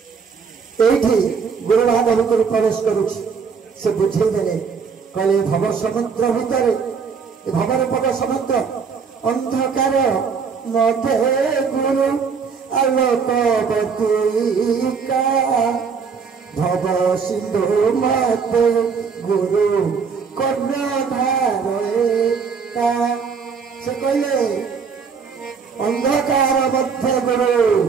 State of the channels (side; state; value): left; quieter; 5.8 dB